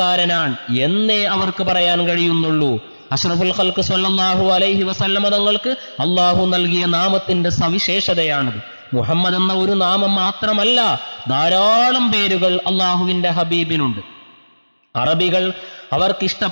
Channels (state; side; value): inverted; both; correlation -1.00